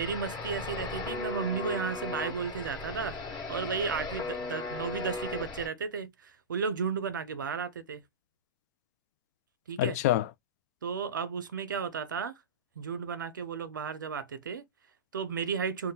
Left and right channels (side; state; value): both; normal; correlation -0.18